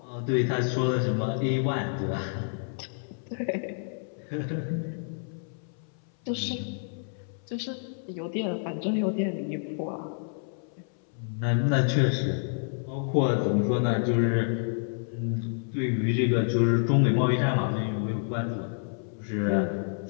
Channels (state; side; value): silent; right; 59 dB below the other